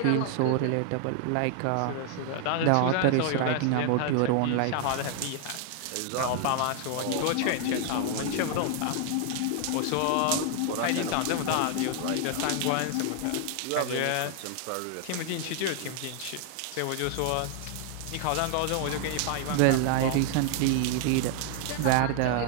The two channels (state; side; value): different; both; correlation 0.00